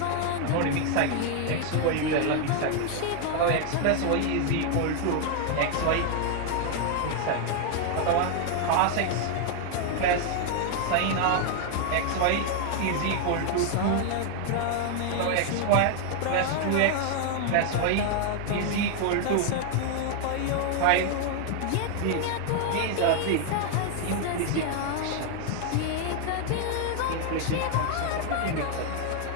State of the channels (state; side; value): different; both; correlation 0.00